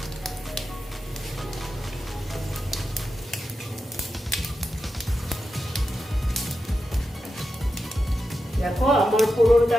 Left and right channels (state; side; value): normal; both; correlation 0.89